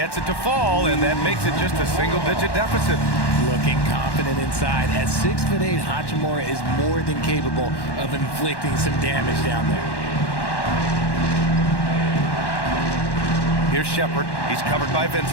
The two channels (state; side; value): late; right; 1.1 ms